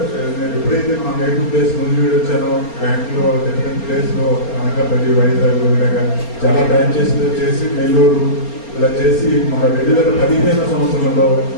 ఎప్పుడైతే మా నేటివ్ ప్లేస్ నుంచి వచ్చానో, బ్యాంక్లో డిఫరెంట్ ప్లేస్లో అనకాపల్లి, వైజాగ్ ఇలాగా చాలా బ్రాంచెస్ చేసి నెల్లూరు ఇలా చేసి మన 2015 సంవత్సరంలో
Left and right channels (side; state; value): right; late; 4.3 ms